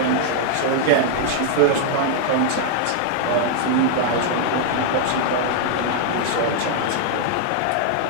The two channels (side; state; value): both; different; correlation 0.00